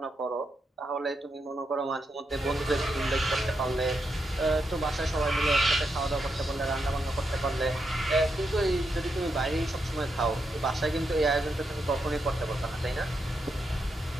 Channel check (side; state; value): both; normal; correlation 0.83